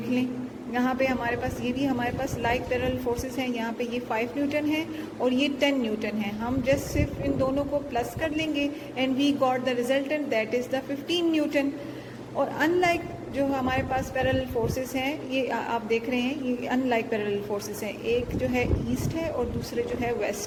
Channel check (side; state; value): both; identical; correlation 1.00